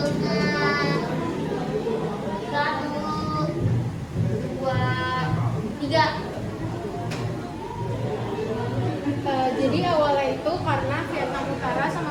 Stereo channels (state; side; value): identical; both; correlation 1.00